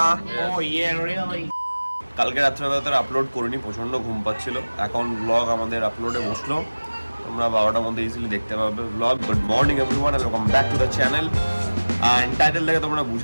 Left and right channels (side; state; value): both; inverted; correlation -1.00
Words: কালকে রাত্রেবেলা আপলোড করিনি, প্রচন্ড ঘুম পাচ্ছিল। এখন ব্লগ আমাদের আপলোডে বসলো, তোমরা 12টার মধ্যে ইজিলি দেখতে পাবে blog. Good morning everyone and welcome back to the channel. And title দেখে তোমরা